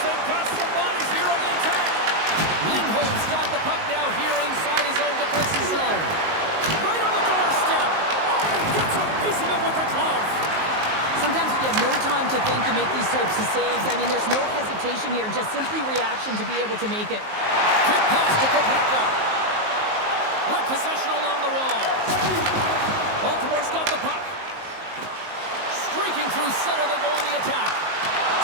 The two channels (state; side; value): late; left; 19 ms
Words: got some bodies here on the attack. Lindholm's got the puck now here inside his own defensive zone. Right on the doorstep. Oh, gets a piece of it with the glove. Sometimes you have no time to think to make these types of saves. I mean, there's no hesitation here, just simply reaction to be able to make it. Quick pass to Carpenter. With possession along the wall. Baltimore's got the puck. Streaking through center, they go on the attack.